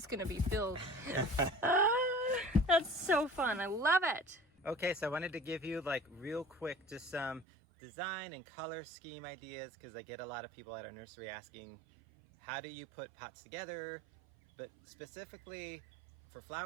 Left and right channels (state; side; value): drops out; left; at 7.5 s